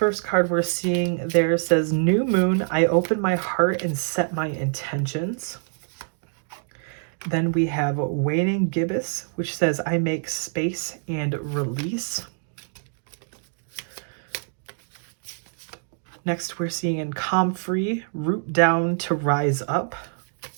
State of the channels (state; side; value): silent; left; 62 dB below the other